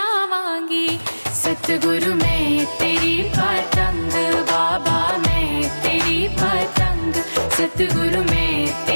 सतगुरु मैं तेरी पतंग, बाबा मैं तेरी पतंग। सतगुरु मैं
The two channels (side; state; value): both; inverted; correlation -1.00